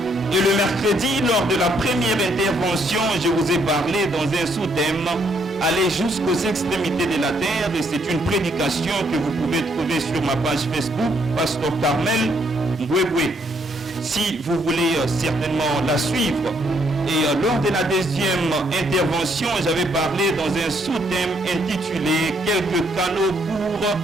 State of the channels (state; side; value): normal; both; correlation 0.71